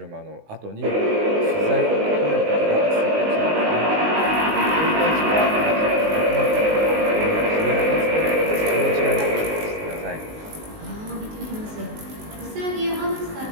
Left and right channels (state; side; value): late; left; 19 ms